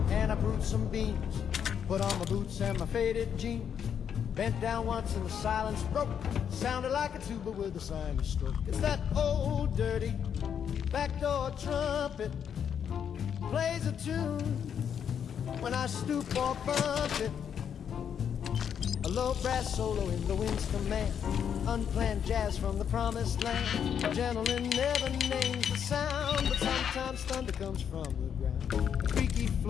and I brewed some beans. Put on my boots and my faded jeans. Bent down once and the silence broke. Sounded like a tuba with a sinus stroke. It's that old dirty backdoor trumpet. Plays a tune when I stoop or bump it. A low brass solo in the wind's command. Unplanned jazz from the promised land. A gentleman never names the sound, but sometimes thunder comes from the ground. A creaky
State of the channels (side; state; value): right; quieter; 8.1 dB